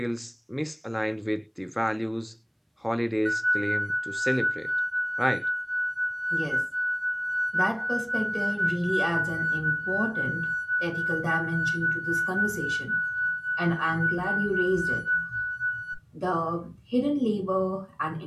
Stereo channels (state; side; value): identical; both; correlation 1.00